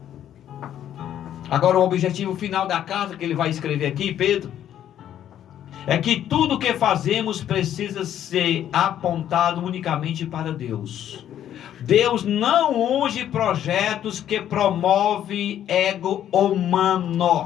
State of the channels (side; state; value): right; quieter; 10.8 dB